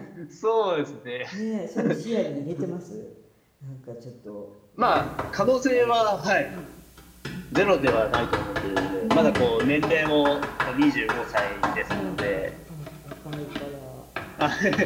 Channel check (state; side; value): identical; both; correlation 1.00